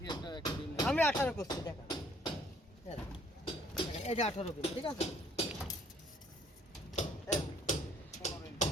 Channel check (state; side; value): normal; both; correlation 0.61